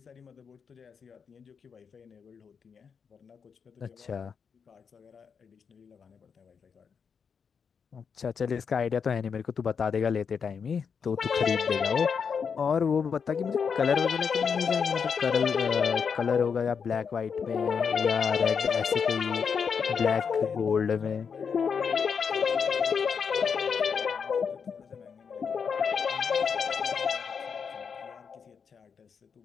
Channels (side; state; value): right; quieter; 6.3 dB